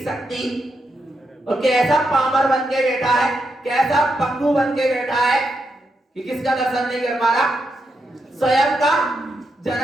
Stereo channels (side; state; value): both; normal; correlation 0.83